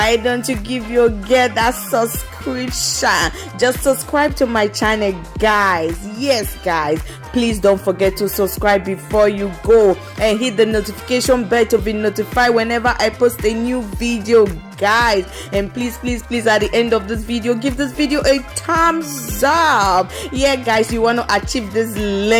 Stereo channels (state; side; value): identical; both; correlation 1.00